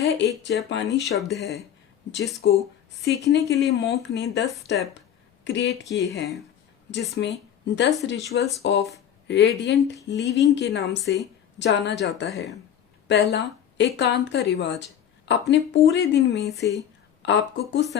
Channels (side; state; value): right; quieter; 9.6 dB